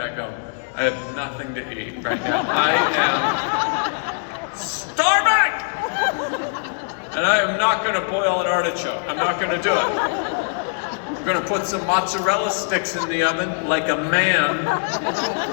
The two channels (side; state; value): right; silent; digital silence